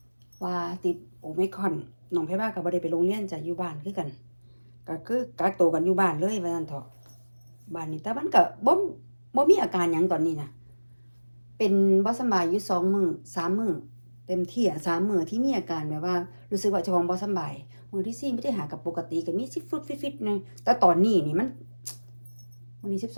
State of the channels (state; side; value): inverted; both; correlation -1.00